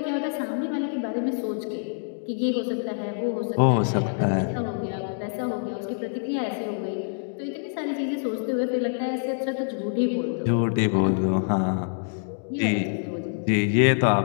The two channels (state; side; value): silent; right; digital silence